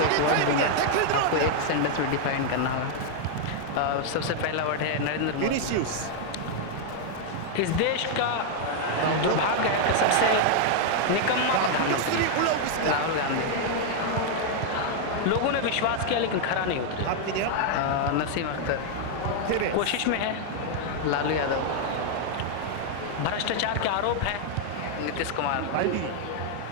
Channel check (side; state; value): both; different; correlation 0.00